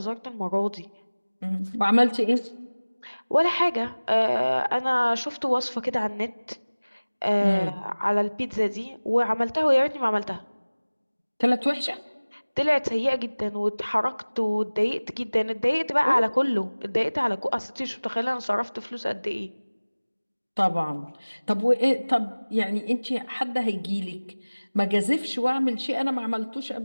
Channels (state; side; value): inverted; both; correlation -1.00